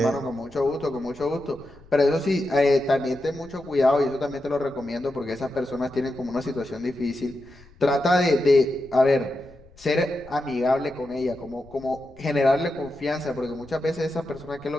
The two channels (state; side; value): noise; left; rumble, 25 dB below the sound